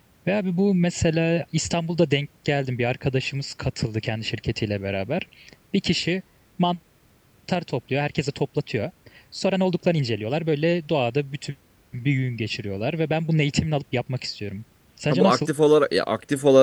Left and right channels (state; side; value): identical; both; correlation 1.00